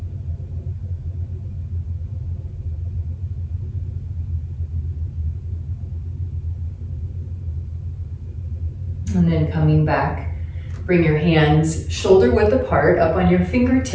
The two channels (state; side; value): identical; both; correlation 1.00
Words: And then coming back, bring your hands shoulder width apart, up on your